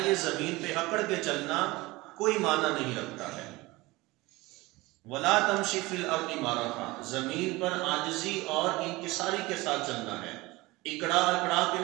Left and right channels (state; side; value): quieter; left; 21.2 dB